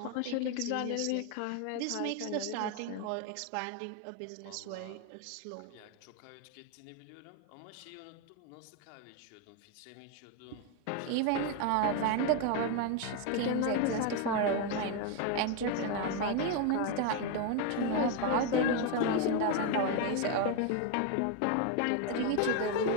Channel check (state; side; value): different; both; correlation 0.01